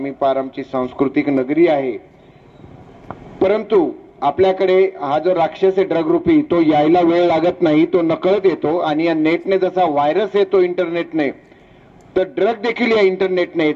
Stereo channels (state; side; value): identical; both; correlation 1.00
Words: पार आमची सांस्कृतिक नगरी आहे, परंतु आपल्याकडे हा जो राक्षस आहे ड्रग रूपी, तो यायला वेळ लागत नाही, तो नकळत येतो. आणि या नेटने जसा व्हायरस येतो इंटरनेटने, तर ड्रग देखील या इंटरनेटने